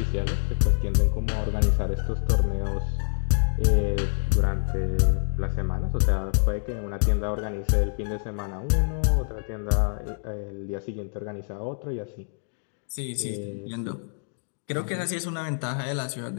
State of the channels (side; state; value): right; silent; digital silence